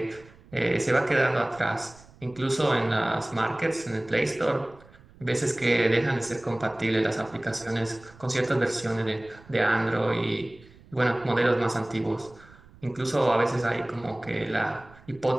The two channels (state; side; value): noise; right; rumble, 24 dB below the sound